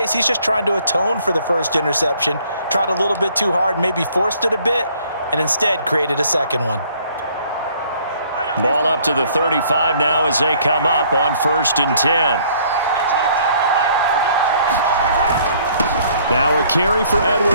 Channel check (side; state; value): both; inverted; correlation -0.61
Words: he's just trying to atone for the first interception. Tried a little bit too hard, maybe forced it a bit, and instead created a second one. Ball up to the 35 now as they come up on 1st and 10. Now a carry for